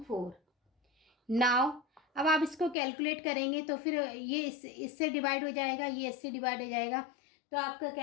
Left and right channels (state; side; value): drops out; right; at 2.8 s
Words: Now अब आप इसको कैलकुलेट करेंगे तो फिर ये इससे डिवाइड हो जाएगा, ये इससे डिवाइड हो जाएगा, तो आपका